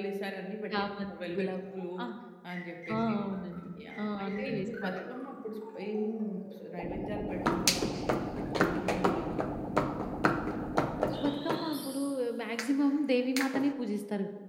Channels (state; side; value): identical; both; correlation 1.00